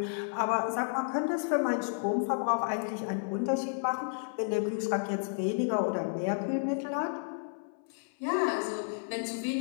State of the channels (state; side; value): silent; right; 57 dB below the other